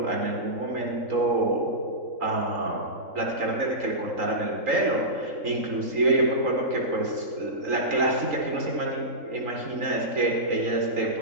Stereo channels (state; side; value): late; left; 3.8 ms